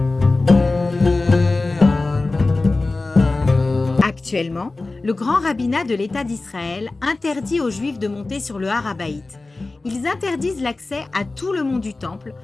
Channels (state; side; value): quieter; right; 3.3 dB